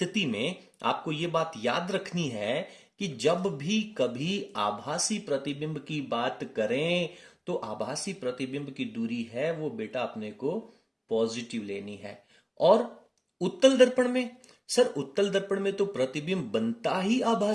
में आपको ये बात याद रखनी है कि जब भी कभी आभासी प्रतिबिंब की बात करें तो आभासी प्रतिबिंब की दूरी है वो बेटा अपने को पॉजिटिव लेनी है। और उत्तल दर्पण में, सर उत्तल दर्पण में तो प्रतिबिंब बनता ही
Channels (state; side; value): identical; both; correlation 1.00